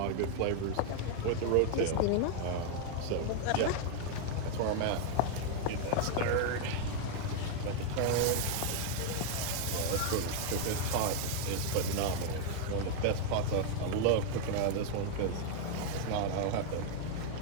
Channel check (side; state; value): both; different; correlation 0.00